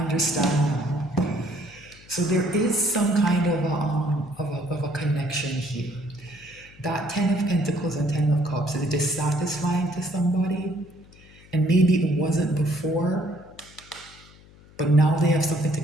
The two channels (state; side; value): noise; left; hum, 24 dB below the sound